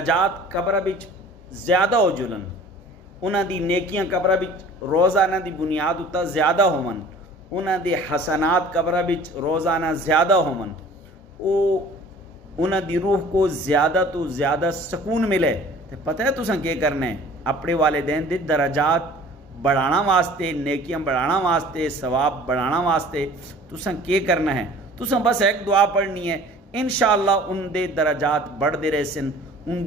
कब्र विच ज़्यादा हो जुलन, उन्हां दी नेकियां कब्र विच रोज़ाना दी बुनियाद उत्ता ज़्यादा होवन, उन्हां दे हसनात कब्र विच रोज़ाना ज़्यादा होवन, उन्हां दी रूह को ज़्यादा तो ज़्यादा सुकून मिले, तो पता है तुसां क्या करना है? अपने वालिदैन दे दराजात बढ़ाना वास्ते, नेकियां बढ़ाना वास्ते, सवाब बढ़ाना वास्ते तुसां क्या करना है? तुसां बस एक दुआ पढ़नी है, इंशाअल्लाह उनके दराजात बढ़ते रहसन,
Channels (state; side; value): normal; both; correlation 0.47